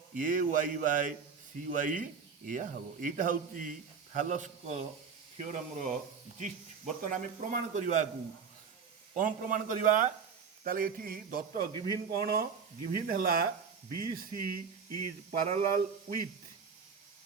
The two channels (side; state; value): left; quieter; 6.0 dB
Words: AY ବାଇ CY ଏଇଆ ହେବ। ଏଇଟା ହେଉଛି ଥାଲସ୍ଙ୍କ ଥିଓରମ୍ର ଜିଷ୍ଟ। ବର୍ତ୍ତମାନ ଆମେ ପ୍ରମାଣ କରିବାକୁ କ'ଣ ପ୍ରମାଣ କରିବା? ତାହେଲେ ଏଠି ଦତ୍ତ ଗିଭିନ୍ କ'ଣ? ଗିଭିନ୍ ହେଲା BC is parallel with